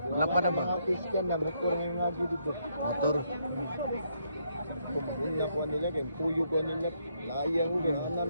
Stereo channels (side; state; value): both; inverted; correlation -0.74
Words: Malapad na ba? Mga Christian na motor ng ngagi dito. Motor. ko maguna ko nila kay tuyo ko nila. Layang ko kay ana